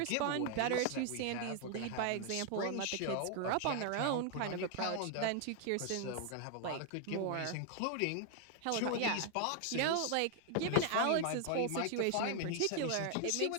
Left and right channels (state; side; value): different; both; correlation 0.00